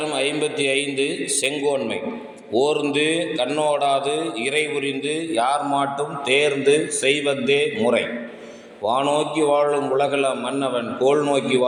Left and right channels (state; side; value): identical; both; correlation 1.00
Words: 55 செங்கோன்மை. ஓர்ந்து கண்ணோடாது இறை புரிந்து யார் மாட்டும் தேர்ந்து செய்வதே முறை. வானோக்கி வாழும் உலகள மன்னவன் கோல் நோக்கி